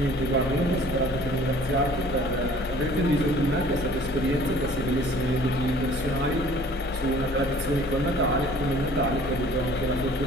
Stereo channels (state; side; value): normal; both; correlation 0.51